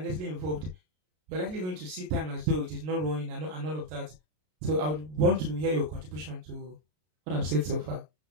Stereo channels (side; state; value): left; late; 33 ms